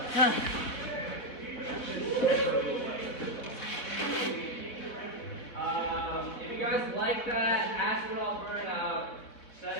If you guys like that, ask it all burn out. Set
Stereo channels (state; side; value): late; right; 4.0 ms